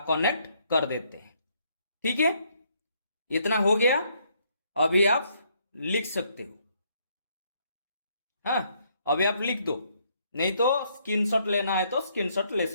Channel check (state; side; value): inverted; both; correlation -0.70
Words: कनेक्ट कर देते हैं। ठीक है, इतना हो गया। अभी आप लिख सकते हो। हाँ, अभी आप लिख दो, नहीं तो स्क्रीनशॉट लेना है तो स्क्रीनशॉट ले